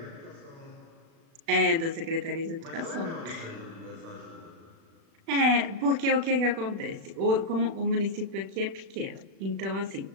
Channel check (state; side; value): late; left; 36 ms